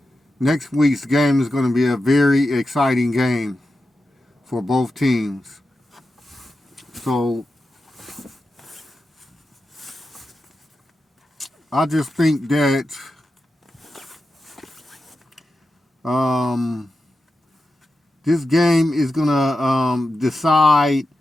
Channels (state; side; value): normal; both; correlation 0.90